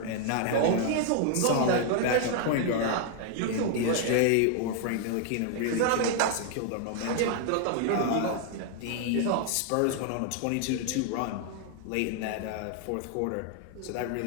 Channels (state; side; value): different; both; correlation 0.00